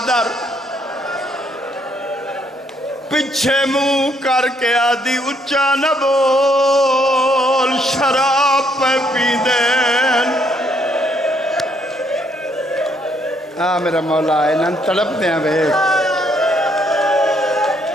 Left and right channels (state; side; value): normal; both; correlation 0.70